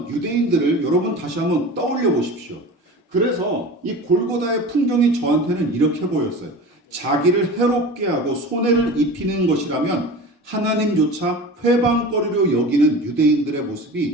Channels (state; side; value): normal; both; correlation 0.35